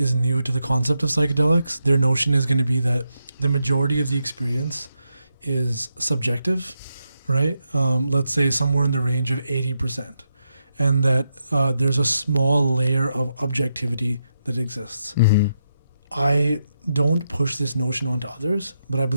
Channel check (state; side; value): inverted; both; correlation -0.83